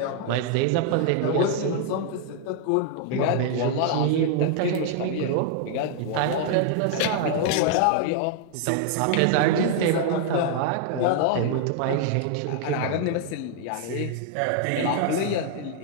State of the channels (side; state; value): both; different; correlation 0.00